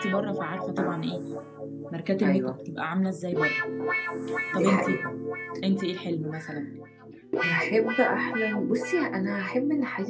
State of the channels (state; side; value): identical; both; correlation 1.00